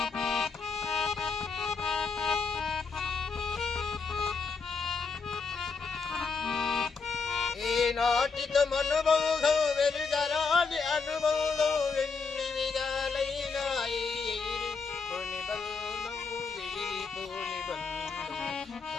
ఈనాటితో అనుబంధం వెరుగరాని అనుబంధం ఎన్ని విధాలైనా కొన్ని బంధం విడిపో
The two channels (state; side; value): quieter; right; 4.9 dB